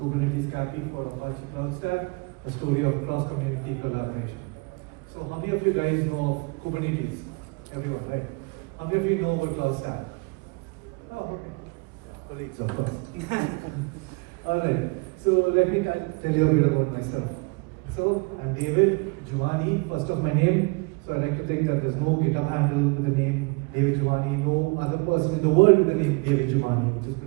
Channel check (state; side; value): quieter; left; 29.6 dB